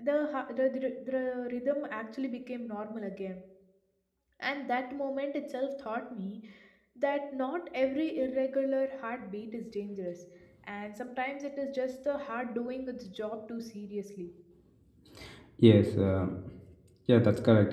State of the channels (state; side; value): identical; both; correlation 1.00